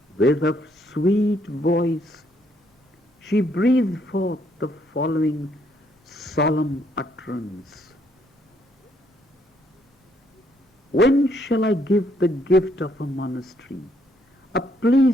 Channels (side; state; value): both; normal; correlation 0.71